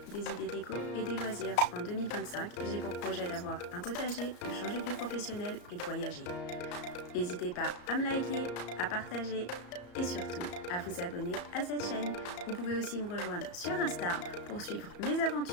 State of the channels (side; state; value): right; late; 34 ms